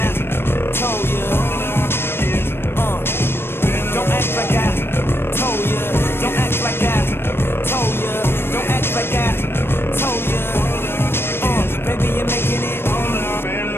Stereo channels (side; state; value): right; late; 0.11 ms